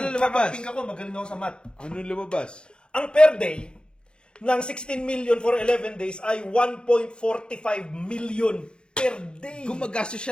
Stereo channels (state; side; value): late; right; 0.052 ms